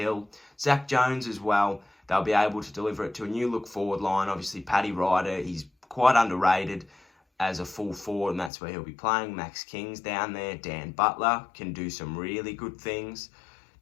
Zach Jones as well, they'll be able to deliver it to a new look forward line. Obviously, Paddy Ryder, he's quite underrated as a full forward, and that's where he'll be playing. Max King's down there. Dan Butler can do some really good things.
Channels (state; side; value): drops out; right; at 8.5 s